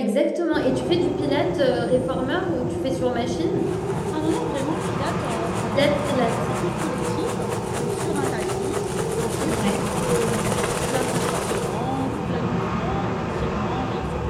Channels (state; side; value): identical; both; correlation 1.00